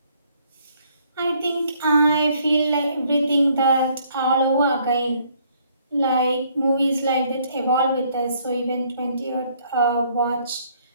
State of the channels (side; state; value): both; inverted; correlation -0.65